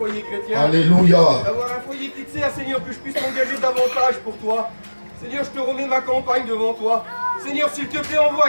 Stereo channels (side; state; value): both; inverted; correlation -1.00